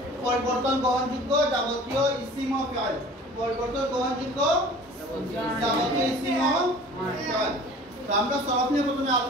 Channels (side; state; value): both; normal; correlation 0.45